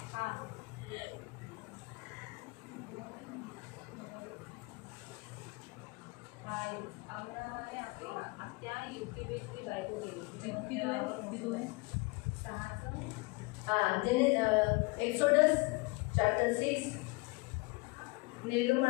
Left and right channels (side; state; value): right; quieter; 26.0 dB